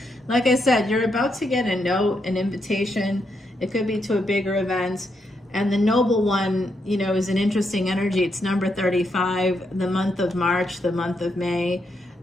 Like I said, you're about to get a note, an invitation. It could be to a bigger event. And the noble one, you know, is an interesting energy. It's number 35, the month of March, the month of May.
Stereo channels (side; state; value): both; normal; correlation 0.80